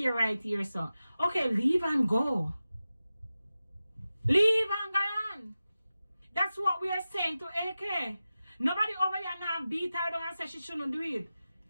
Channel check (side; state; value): both; inverted; correlation -0.94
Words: right here. So okay, leave and go. Leave and go on. That's what we are saying to AK. Nobody over here now beat her down and say she shouldn't do it.